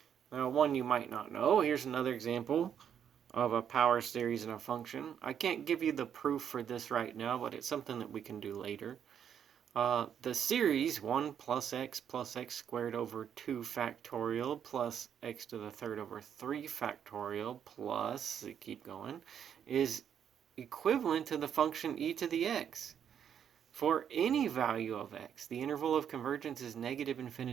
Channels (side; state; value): left; quieter; 8.6 dB